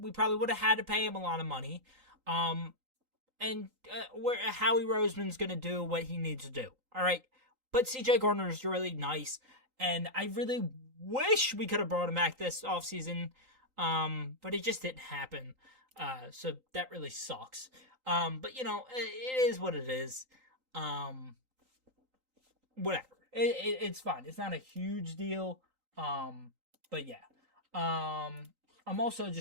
probably would have had to pay him a lot of money. And Howie Roseman's going to do what he needs to do. All right. But CJ Gardner is really nice, and I really wish we could have brought him back this offseason, but it just didn't happen. So that really sucks. But, it is what it is. Whatever. It's fine. It's not a huge deal. But yeah. I'm also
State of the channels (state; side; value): late; left; 3.9 ms